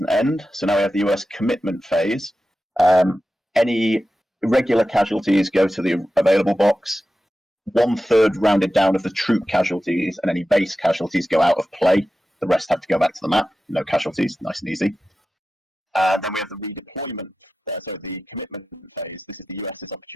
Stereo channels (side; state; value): both; normal; correlation 0.93